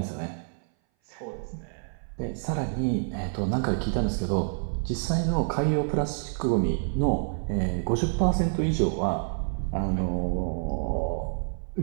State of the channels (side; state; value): left; silent; 58 dB below the other